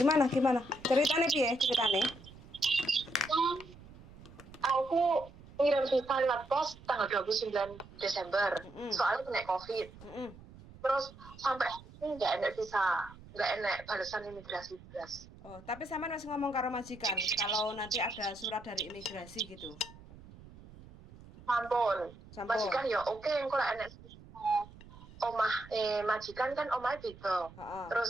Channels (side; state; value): right; noise; rumble, 19 dB below the sound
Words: Ceritane piye ceritane? Hmm, aku ngirim visa lewat pos tanggal 29 Desember. Heeh. Soalnya kena COVID. Heeh. Terus sampai ini nggak enak visa, nggak enak balasan imigrasi belas. Oh, tapi sampean masih ngomong karo majikan kalau nanti ada surat dari imigrasi gitu. Sampun. Sampun. Majikan ya oke, engko lek enak omah majikan kan omahnya beda. Heeh.